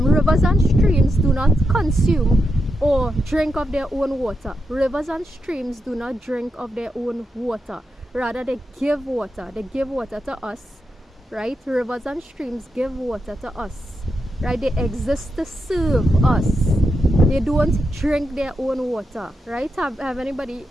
and streams do not consume or drink of their own water. Rivers and streams do not drink of their own water. Rather, they give water. They give water to us, right? Rivers and streams give water to us, right? They exist to serve us. They don't drink their own water, right? Have anybody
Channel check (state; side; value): normal; both; correlation 0.86